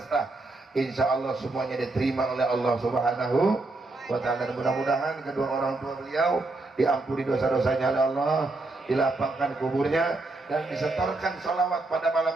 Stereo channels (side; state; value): left; quieter; 3.1 dB